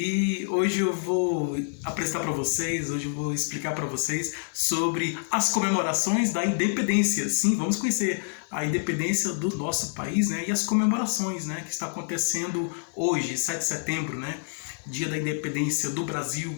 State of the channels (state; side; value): silent; right; digital silence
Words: hoje eu vou apresentar para vocês, hoje eu vou explicar para vocês sobre as comemorações da independência. Sim, vamos conhecer a independência do nosso país, né? E as comemorações, né, que está acontecendo hoje, 7 de setembro, né? Dia da independência do